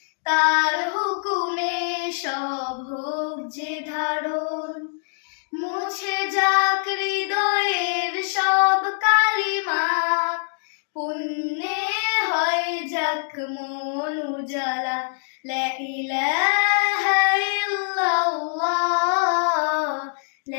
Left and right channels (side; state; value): right; silent; digital silence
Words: তার হুকুমে সব হোক যে ধারণ। মুছে যাক হৃদয়ের সব কালিমা, পুণ্যে হয় যাক মন উজালা। লা ইলাহা ইল্লাল্লাহ,